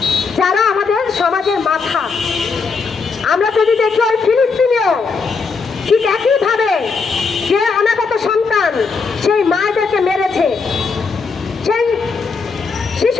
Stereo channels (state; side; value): quieter; right; 4.9 dB